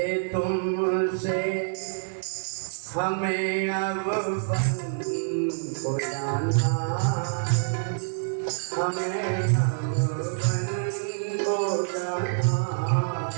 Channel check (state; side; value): silent; left; 60 dB below the other